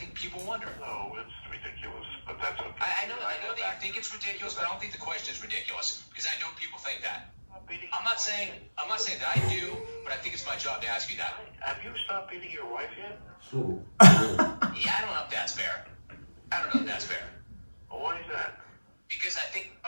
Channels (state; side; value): inverted; both; correlation -1.00